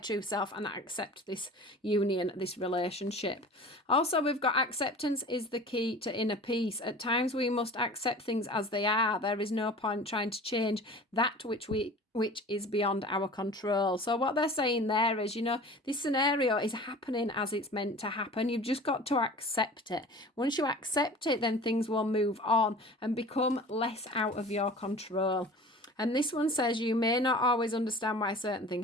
self and accept this union, this relationship. Also, we've got acceptance is the key to inner peace. At times we must accept things as they are. There is no point trying to change that which is beyond our control. So what they're saying there is, you know, this scenario is happening as it's meant to happen. You've just got to accept it. Once you accept it, then things will move on and become less out of your control. And this one says you may not always understand why certain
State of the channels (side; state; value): both; normal; correlation 0.41